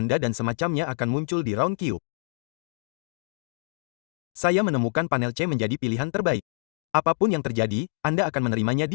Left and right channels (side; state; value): right; silent; digital silence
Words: dan semacamnya akan muncul di Roundcube. Saya menemukan panel C menjadi pilihan terbaik. Apapun yang terjadi, Anda akan menerimanya di